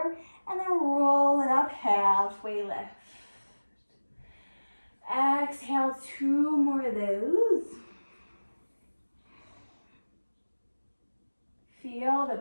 and then roll it up, halfway lift. Exhale, 2 more of those. Feel the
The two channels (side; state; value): both; inverted; correlation -1.00